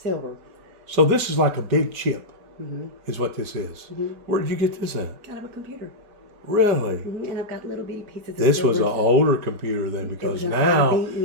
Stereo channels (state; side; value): late; left; 5.0 ms